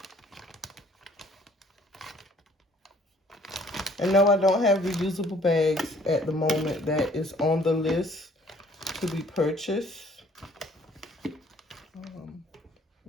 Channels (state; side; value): normal; both; correlation 0.58